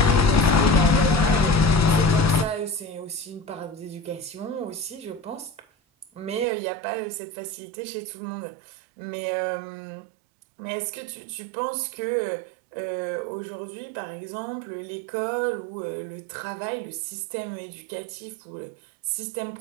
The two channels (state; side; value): drops out; left; at 6.5 s